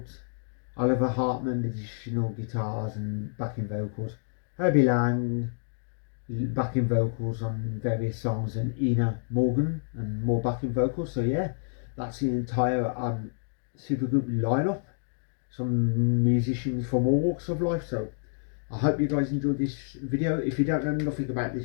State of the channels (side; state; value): right; silent; digital silence